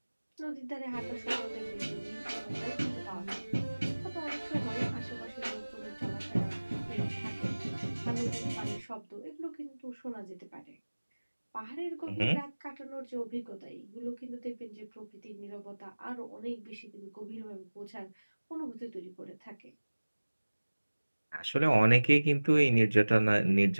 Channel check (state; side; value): inverted; both; correlation -1.00